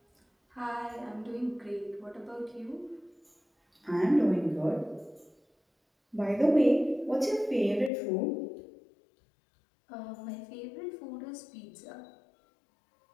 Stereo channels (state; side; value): drops out; right; at 7.9 s